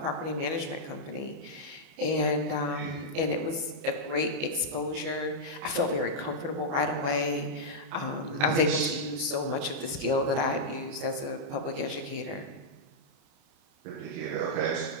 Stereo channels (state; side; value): late; left; 29 ms